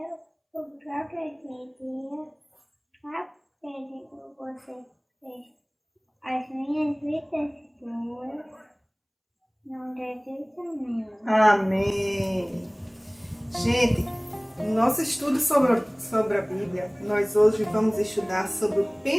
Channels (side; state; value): both; identical; correlation 1.00